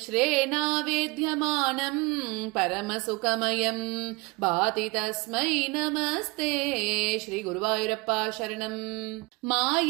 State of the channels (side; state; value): left; quieter; 25.7 dB